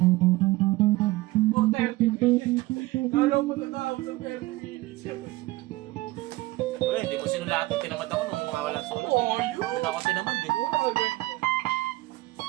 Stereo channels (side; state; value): left; quieter; 19.2 dB